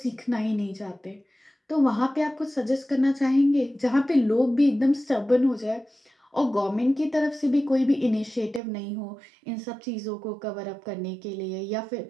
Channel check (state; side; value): drops out; left; at 8.6 s